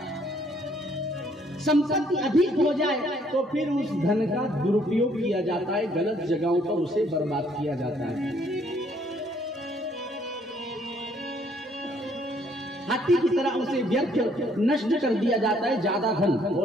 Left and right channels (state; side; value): normal; both; correlation 0.65